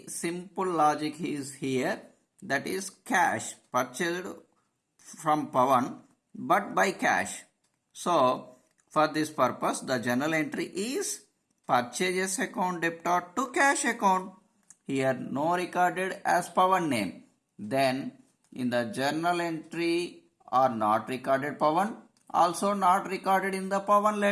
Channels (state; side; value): identical; both; correlation 1.00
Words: simple logic is here. That is cash purchased from Pawan but by cash. So for this purpose the journal entry is purchases account debited to cash account. Here no recorded as Pawan name. Then in the journal entry are not recorded Pawan, also not recorded in the Pawan